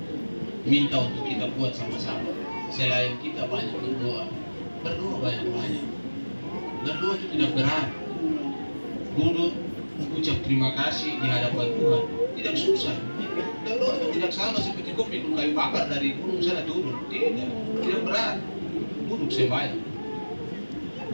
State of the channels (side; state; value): both; inverted; correlation -1.00